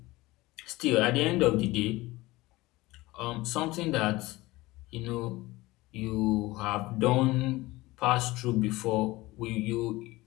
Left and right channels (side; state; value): right; quieter; 19.9 dB